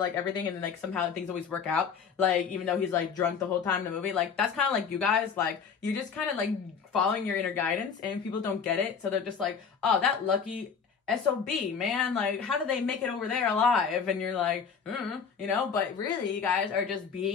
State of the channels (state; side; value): quieter; right; 6.3 dB